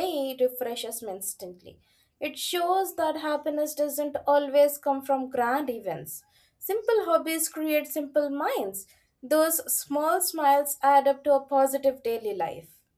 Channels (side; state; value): both; identical; correlation 1.00